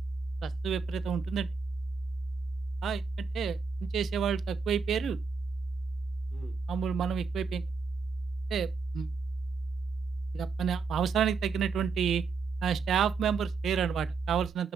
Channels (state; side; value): quieter; left; 5.1 dB